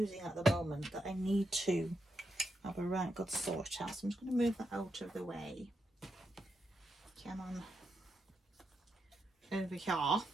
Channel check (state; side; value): normal; both; correlation 0.84